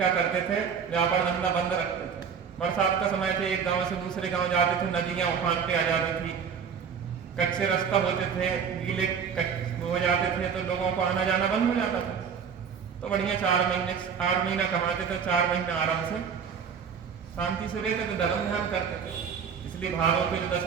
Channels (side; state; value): left; quieter; 6.8 dB